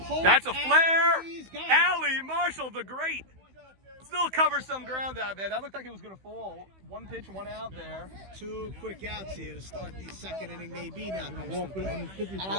That's a flare! He's got it. Allie Marshall, the great! Still covers some ground out there. That looked like it was going to fall. 1 pitch, 1 out there. 2 quick outs here to start the second inning. Maybe now. And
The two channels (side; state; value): left; late; 16 ms